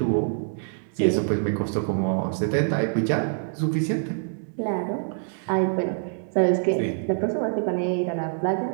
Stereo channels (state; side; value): silent; left; digital silence